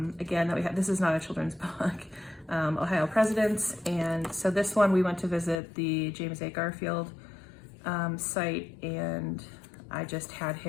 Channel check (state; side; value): drops out; right; at 5.6 s